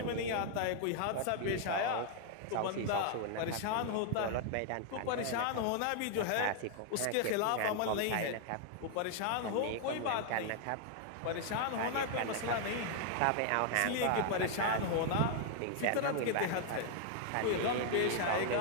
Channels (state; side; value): different; both; correlation 0.00